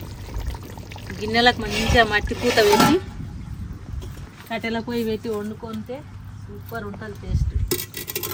గిన్నెలకు మంచిగా మట్టి పూత పెట్టి కట్టెల పొయ్యి పెట్టి వండుకుంటే సూపర్ ఉంటుంది టేస్ట్.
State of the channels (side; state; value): both; identical; correlation 1.00